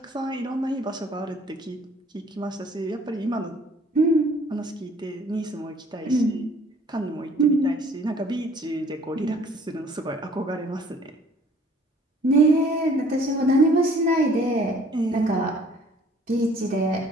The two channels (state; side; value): normal; both; correlation 0.56